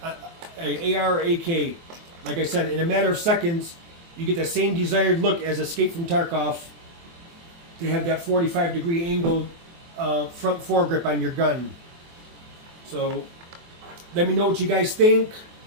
or AK. Like I said, in a matter of seconds, you get the same desired look as Escape from Tarkov, to have that 45-degree angle front foregrip on your gun. So let me know what you guys think.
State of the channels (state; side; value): late; left; 24 ms